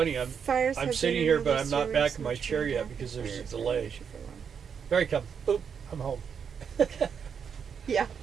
I'm Fires have sitting been here, in but the I'm not series back in my much chair more yet than because there's a fires delay. issue for long. There he comes. Boop. I'm home. Yeah.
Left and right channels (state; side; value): quieter; left; 7.0 dB